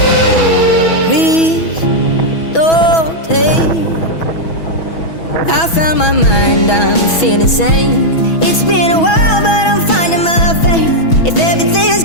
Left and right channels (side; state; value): right; late; 6.1 ms